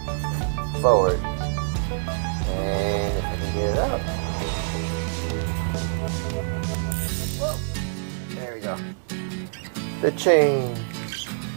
forward, and if I can get it out, whoa, there we go. The chain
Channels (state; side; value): silent; left; digital silence